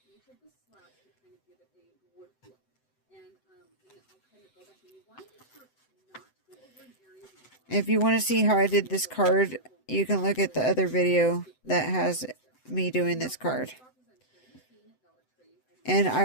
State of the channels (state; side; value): late; right; 7.9 ms